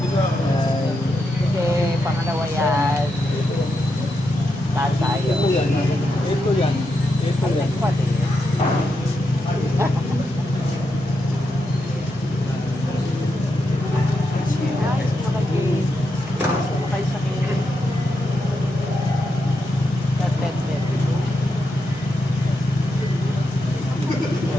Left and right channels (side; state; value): both; normal; correlation 0.84